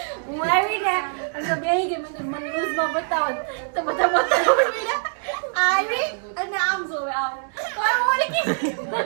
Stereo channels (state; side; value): silent; left; 63 dB below the other